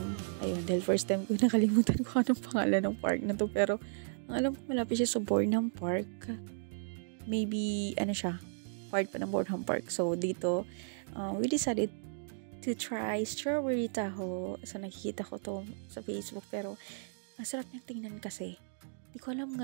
Ayun, dahil first time ko nakalimutan ko anong pangalan ng park na to. Pero ang alam ko malapit siya sa Bornham Park. Maybe, ano siya, part pa ng Bornham Park. So dito, we decided to try strawberry taho. So nakikita ko to sa Facebook pero ang sarap niyang tingnan kasi. Hindi ko alam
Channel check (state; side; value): silent; left; digital silence